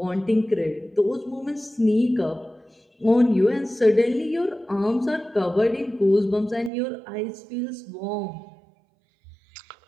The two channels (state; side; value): drops out; left; at 6.7 s